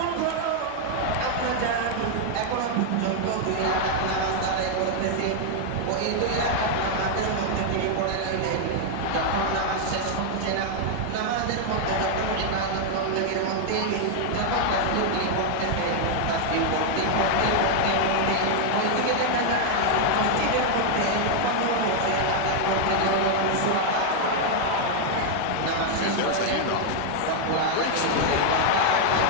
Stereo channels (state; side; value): different; both; correlation 0.00